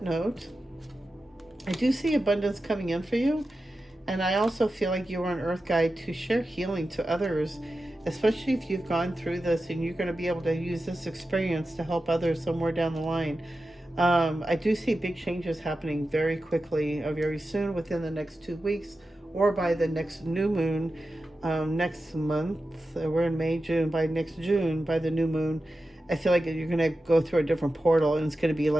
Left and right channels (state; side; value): normal; both; correlation 0.92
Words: note, I do see abundance coming in for you. And I also feel like you are an Earth Guide to share healing to others, especially if you've gone through this and you're going to be able to use this experience to help others somewhere down the line. I do see big changes happening very quickly, very soon, within the next 2 weeks, or by the next new moon. Next month, we're in May, June, by next June, by the new moon, I feel like you're going to go through a different portal, and it's going to be